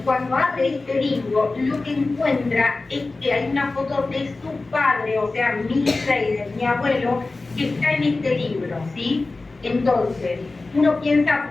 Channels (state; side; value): quieter; right; 3.4 dB